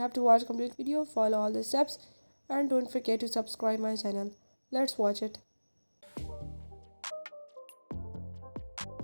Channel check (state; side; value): inverted; both; correlation -1.00